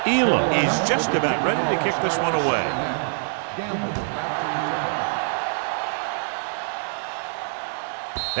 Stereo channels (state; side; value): silent; left; 62 dB below the other